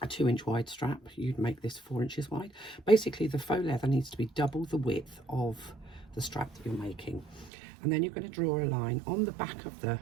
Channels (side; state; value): left; drops out; at 7.5 s